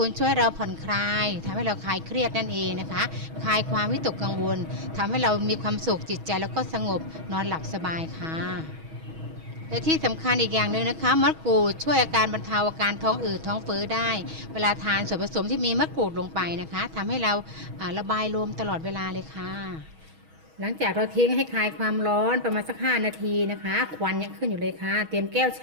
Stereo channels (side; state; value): left; late; 6.3 ms